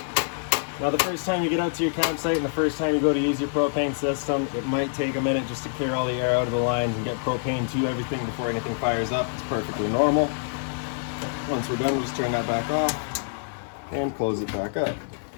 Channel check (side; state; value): right; silent; digital silence